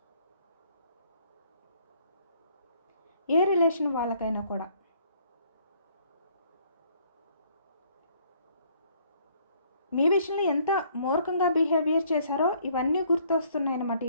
ఏ రిలేషన్ వాళ్ళకైనా కూడా మీ విషయంలో ఎంత మూర్ఖంగా బిహేవియర్ చేశారో ఇవన్నీ గుర్తొస్తున్నాయి అన్నమాట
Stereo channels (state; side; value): inverted; both; correlation -0.63